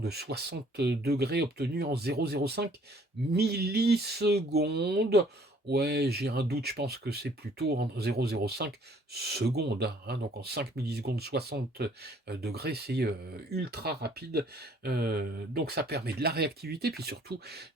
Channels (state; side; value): normal; both; correlation 0.59